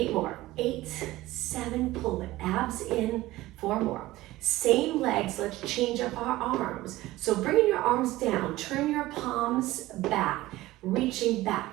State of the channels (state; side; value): quieter; left; 17.4 dB